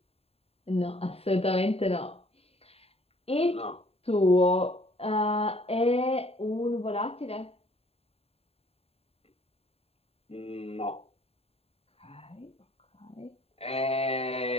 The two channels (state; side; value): late; right; 0.29 ms